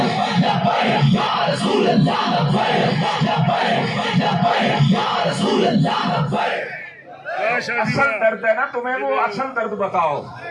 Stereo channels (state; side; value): identical; both; correlation 1.00